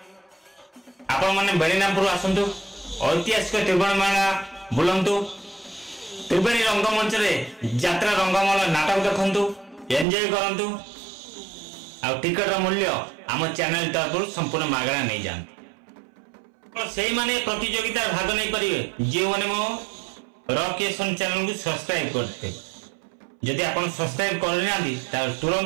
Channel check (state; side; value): drops out; left; at 10.1 s